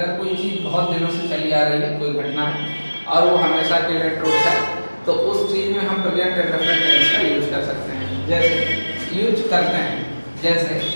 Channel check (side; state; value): both; inverted; correlation -1.00